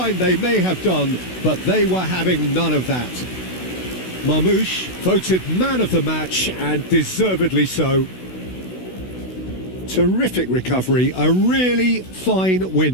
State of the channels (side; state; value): right; late; 16 ms